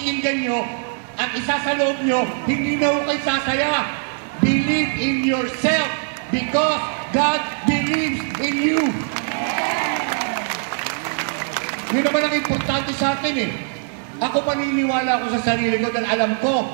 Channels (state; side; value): silent; left; 58 dB below the other